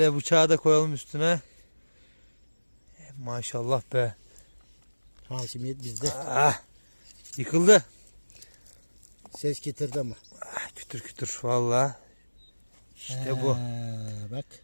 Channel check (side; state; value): both; inverted; correlation -1.00